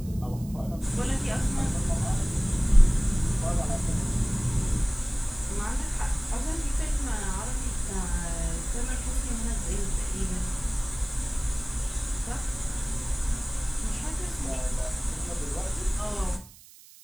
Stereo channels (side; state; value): right; noise; hiss, 22 dB below the sound